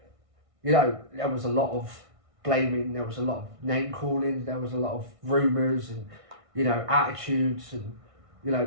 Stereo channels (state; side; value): late; left; 1.6 ms